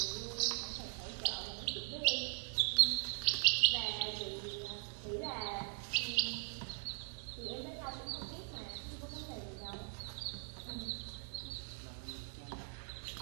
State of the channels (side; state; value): left; silent; 51 dB below the other